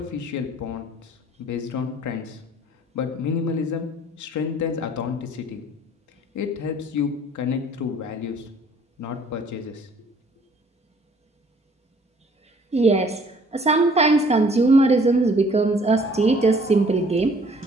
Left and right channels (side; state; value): both; normal; correlation 0.57